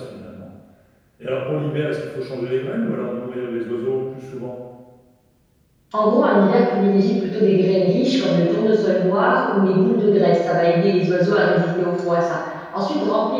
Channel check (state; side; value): identical; both; correlation 1.00